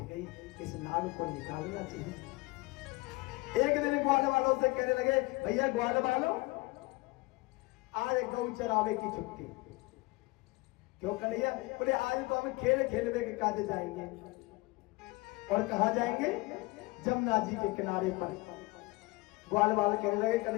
गई, इस नाग को निकालना चाहिए। एक दिन ग्वाल वालों से कहने लगे भैया ग्वाल वालों आज गौ चरावे की छुट्टी। क्यों कन्हैया? बोले आज तो हम खेल खेलवे के काजे जाएंगे। और कहा जाएंगे? जमुना जी के किनारे पर। ग्वाल वाले कहने लगे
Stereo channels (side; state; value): right; quieter; 23.0 dB